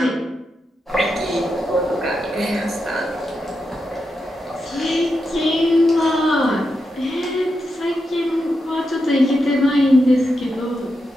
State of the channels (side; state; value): both; normal; correlation 0.86